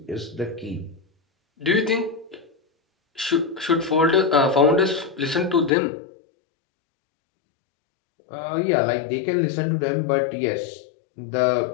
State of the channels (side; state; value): right; drops out; at 5.7 s